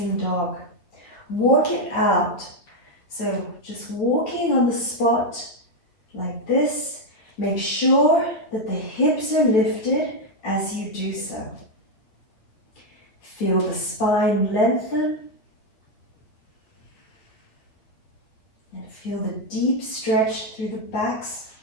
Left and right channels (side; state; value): right; late; 9.0 ms